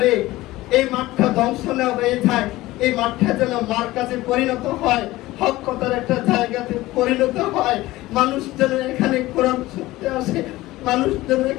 এই মাঠটা ধ্বংস না হয়ে যায়, এই মাঠটা যেন মার কাছে পরিণত হয়, হক কথার একটা জায়গাতে পরিণত হয়। মানুষ যেন এখানে কোরআন শুনতে আসে, মানুষ যেন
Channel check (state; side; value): quieter; right; 17.9 dB